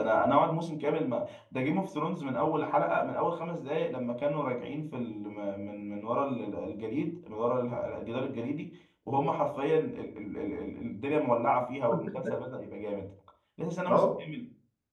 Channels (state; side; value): identical; both; correlation 1.00